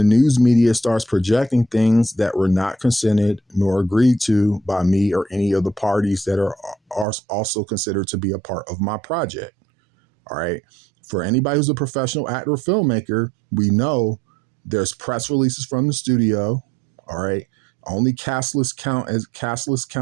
news media starts projecting things that were not consented nor agreed to by me or any of the parties that are also considered to be a part of my project. All right. For anybody who's a professional actor or filmmaker, we know there's press releases from the studio. All right. Only cast list count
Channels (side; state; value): left; drops out; at 7.1 s